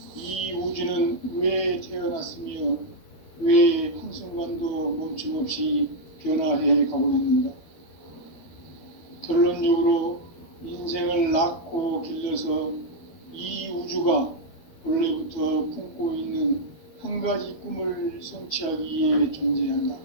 이 우주는 왜 태어났으며 왜 한순간도 멈춤없이 변화해 가고 있는가? 결론적으로 인생을 낳고 길러서 이 우주가 원래부터 품고 있는 한 가지 꿈을 성취하기 위해 존재한다.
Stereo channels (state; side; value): late; right; 13 ms